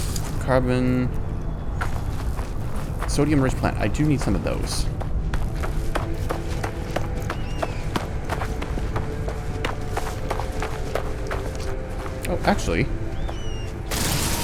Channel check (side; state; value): both; identical; correlation 1.00